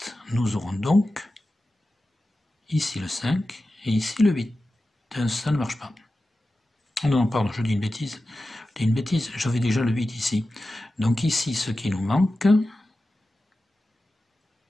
Nous aurons donc ici le 5 et ici le 8. Ça ne marche pas. Non, pardon, je dis une bêtise. J'avais déjà le 8 ici. Donc ici, ce qui nous manque,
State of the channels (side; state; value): both; normal; correlation 0.94